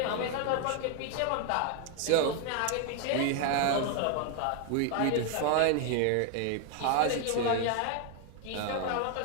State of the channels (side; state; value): both; different; correlation 0.01